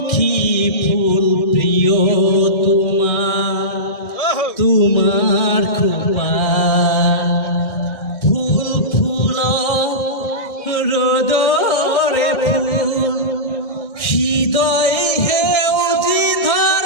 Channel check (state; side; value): late; right; 1.6 ms